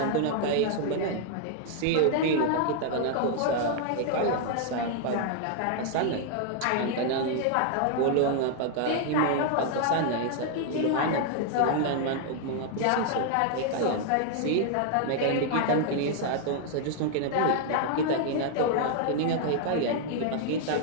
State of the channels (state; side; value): different; both; correlation 0.00